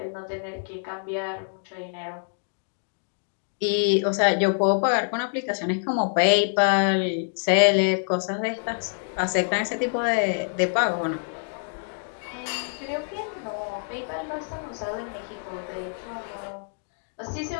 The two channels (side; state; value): right; silent; digital silence